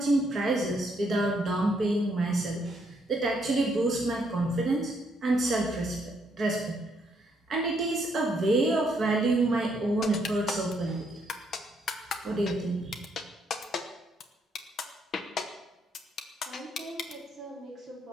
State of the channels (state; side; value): normal; both; correlation 0.73